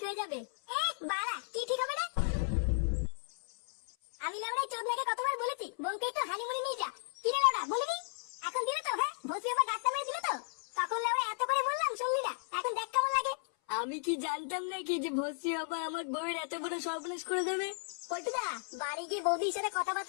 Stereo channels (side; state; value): right; silent; 55 dB below the other